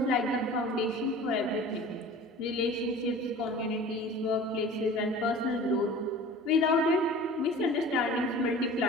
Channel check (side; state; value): both; normal; correlation 0.41